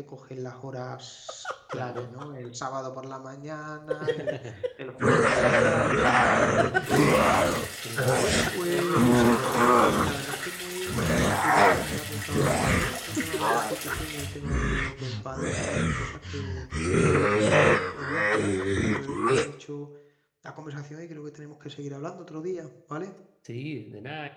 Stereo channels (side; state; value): both; identical; correlation 1.00